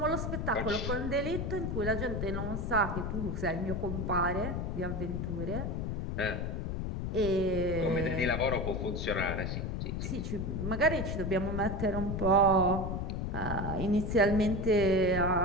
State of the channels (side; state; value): left; noise; rumble, 2 dB below the sound